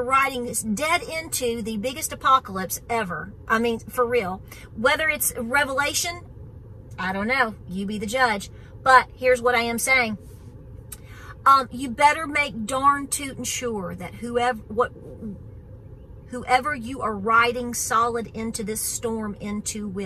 riding this dead into the biggest apocalypse ever. I mean, for real. Whether it's Revelation, I don't know. You be the judge. But here's what I am saying. You better make darn tootin' sure that whoever you are riding solid into this storm into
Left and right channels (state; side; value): identical; both; correlation 1.00